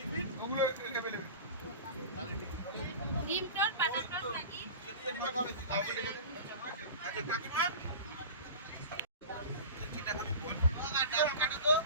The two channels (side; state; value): both; inverted; correlation -0.33